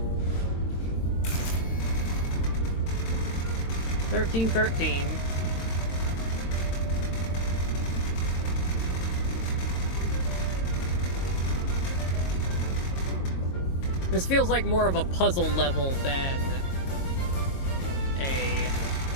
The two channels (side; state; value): right; late; 22 ms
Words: $13. This feels like more of a puzzle level than a...